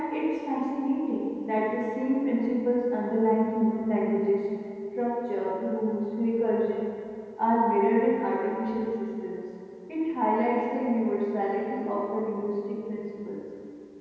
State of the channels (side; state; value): both; identical; correlation 1.00